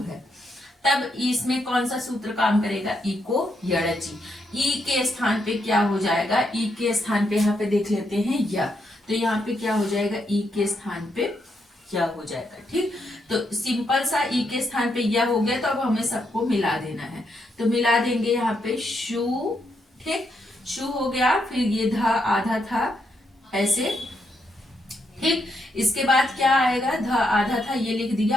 है। तब इसमें कौन सा सूत्र काम करेगा? इको यड़चि। ई के स्थान पे क्या हो जाएगा? ई के स्थान पे यहाँ पे देख लेते हैं या, तो यहाँ पे क्या हो जाएगा? ई के स्थान पे या हो जाएगा। ठीक, तो सिंपल सा ई के स्थान पे या हो गया। तो अब हमें सबको मिला देना है, तो मिला देंगे यहाँ पे शु। ठीक, शु हो गया। फिर ये धा आधा था ऐसे। ठीक, इसके बाद क्या आएगा? ध आधा था, ये लिख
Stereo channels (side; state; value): both; normal; correlation 0.79